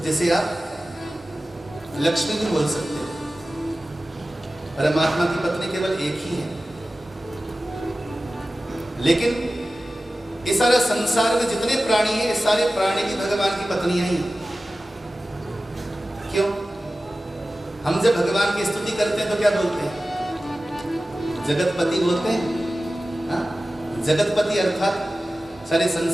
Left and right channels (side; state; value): both; normal; correlation 0.95